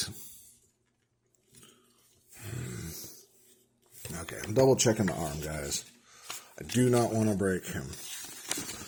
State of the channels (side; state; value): both; identical; correlation 1.00